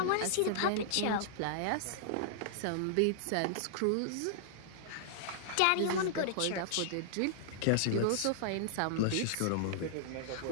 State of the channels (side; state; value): both; different; correlation -0.01